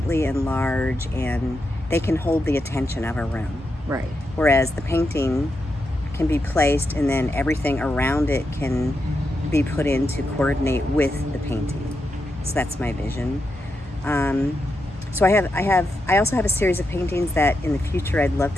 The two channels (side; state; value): both; normal; correlation 0.85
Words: and large, and they can hold the attention of a room. Right. Whereas the painting can be placed, and then everything around it can be put in to coordinate with the painting. So that's my vision. So I also have a series of paintings that in the future I'd love